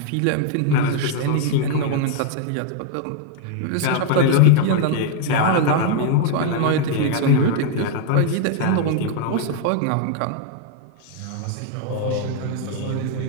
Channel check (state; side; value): different; both; correlation 0.00